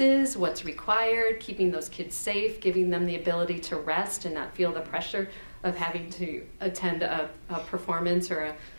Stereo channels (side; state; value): both; inverted; correlation -1.00